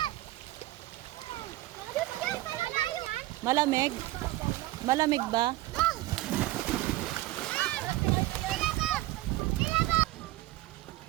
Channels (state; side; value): quieter; left; 17.1 dB